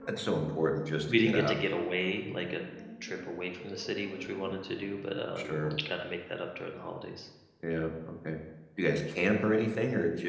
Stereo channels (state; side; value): identical; both; correlation 1.00